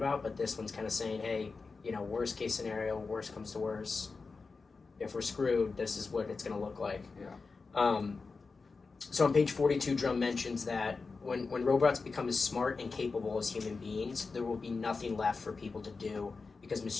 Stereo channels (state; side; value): quieter; right; 4.3 dB